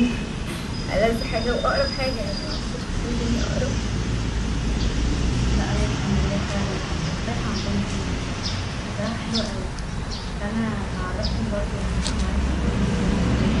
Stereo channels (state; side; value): identical; both; correlation 1.00